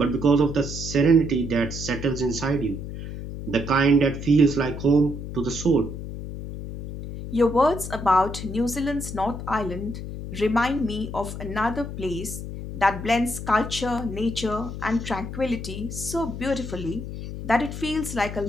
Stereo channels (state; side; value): noise; left; hum, 8 dB below the sound